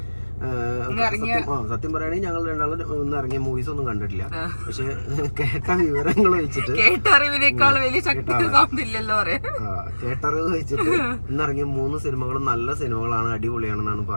സത്യം പറയുകയാണെങ്കിൽ ഞങ്ങൾ രണ്ടാളും ഒന്ന് ഇറങ്ങിയ മൂവീസ് ഒന്നും കണ്ടിട്ടില്ല. പക്ഷെ കേട്ട വിവരങ്ങൾ വെച്ചിട്ട് കേട്ടറിവ് വെച്ചിട്ട് ഇന്നിറങ്ങിയ 3 സിനിമകളും നല്ല സിനിമകളാണ്, അടിപൊളിയാണെന്നാണ്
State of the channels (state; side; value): inverted; both; correlation -1.00